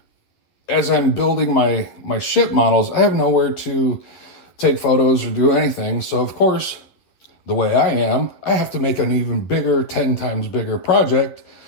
as I'm building my ship models, I have nowhere to take photos or do anything. So of course, the way I am, I have to make an even bigger, 10 times bigger project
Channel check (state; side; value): late; right; 11 ms